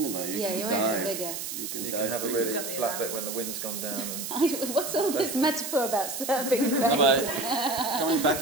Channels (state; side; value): noise; right; hiss, 6 dB below the sound